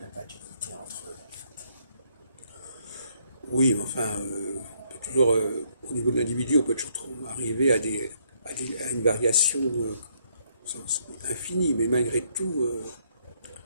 a pas d'unité entre eux, en fait. Oui, mais enfin, on peut toujours, au niveau de l'individu, on peut toujours arriver à une variation infinie, mais malgré tout,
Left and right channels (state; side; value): inverted; both; correlation -0.70